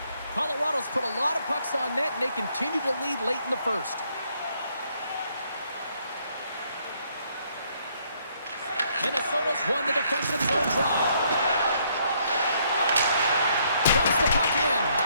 Colorado's put a lot of pucks on net, and they continue to lead late in the first. Minnesota's won the defensive zone draw. Dumps the puck in.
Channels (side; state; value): both; inverted; correlation -0.69